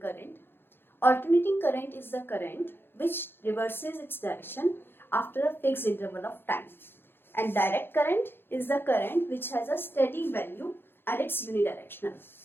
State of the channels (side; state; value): right; late; 0.10 ms